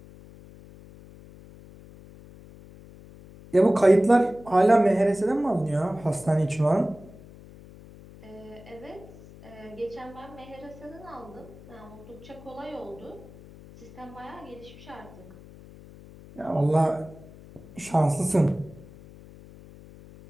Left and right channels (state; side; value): noise; left; hum, 20 dB below the sound